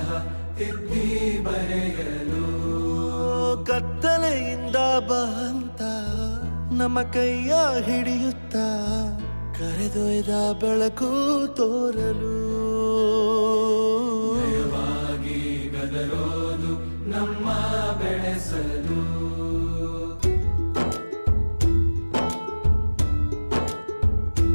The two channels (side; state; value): both; inverted; correlation -1.00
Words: ತಿದ್ದಿ ಬರೆಯಲು ಕತ್ತಲೆಯಿಂದ ಬಂತ ನಮ್ಮ ಕೈಯ ಹಿಡಿಯುತ್ತ ಕರೆದೊಯ್ದ ಬೆಳಕು ತೋರಲು ಭಯವಾಗಿ ಗದರೋದು ನಮ್ಮ ಬೆಳೆಸಲು